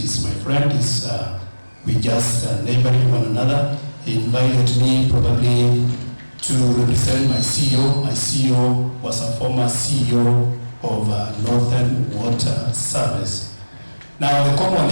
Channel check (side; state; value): both; inverted; correlation -1.00